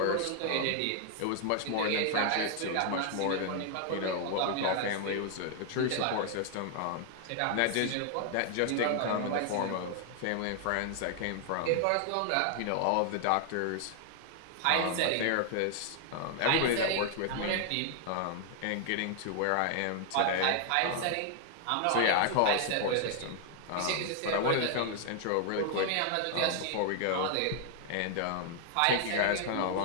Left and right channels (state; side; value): different; both; correlation 0.00